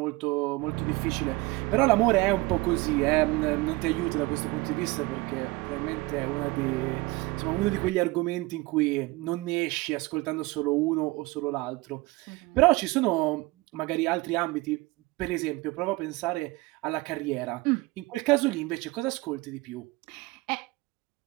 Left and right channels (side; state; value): left; quieter; 21.6 dB